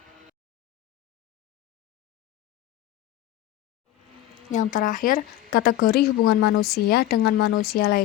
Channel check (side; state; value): right; quieter; 13.6 dB